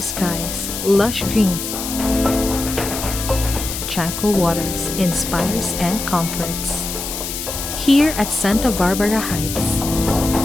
skies, lush greens, tranquil waters inspires and comforts. Here at Sta Barbara Heights,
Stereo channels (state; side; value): noise; left; hiss, 6 dB below the sound